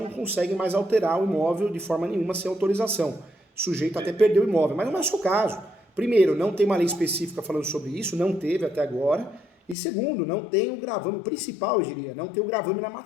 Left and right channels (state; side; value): drops out; right; at 9.8 s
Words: consegue mais alterar o imóvel de forma nenhuma sem autorização. Sujeito até perder o imóvel, mas não é o seu caso. Primeiro, não tem uma lei específica falando sobre isso, não teve até agora. E segundo, não tem o gravame, o principal eu diria, não tem o gravame na